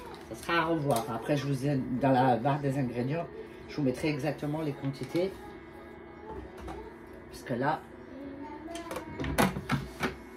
ça sera à revoir. Après, je vous ai dans la barre des ingrédients, je vous mettrai exactement les quantités. Parce que là,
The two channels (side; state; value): both; identical; correlation 1.00